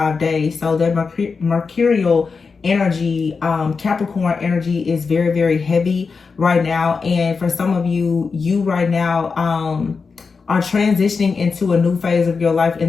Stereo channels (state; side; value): quieter; right; 4.9 dB